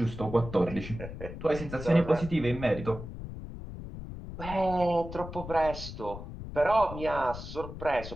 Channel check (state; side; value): noise; left; rumble, 10 dB below the sound